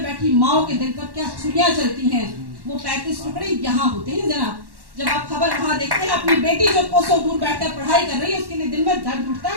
बैठी माओ के दिल पर क्या छुरियां चलती हैं। वो 35 टुकड़े यहाँ होते हैं जनाब। जब आप खबर वहाँ देखते हैं, अपनी बेटी जो कोसों दूर बैठकर पढ़ाई कर रही है, उसके लिए दिल में दर्द उठता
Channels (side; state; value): left; late; 1.1 ms